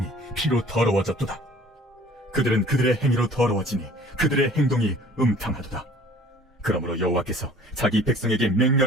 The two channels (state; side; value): normal; both; correlation 0.51